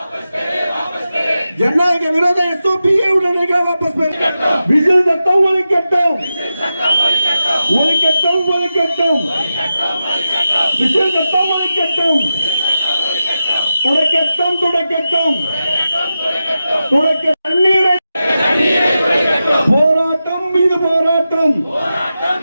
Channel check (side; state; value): both; inverted; correlation -0.91